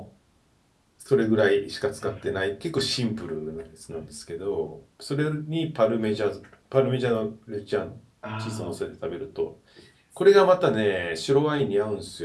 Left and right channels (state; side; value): identical; both; correlation 1.00